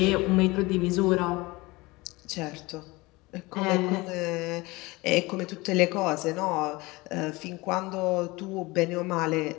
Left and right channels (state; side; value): quieter; right; 22.6 dB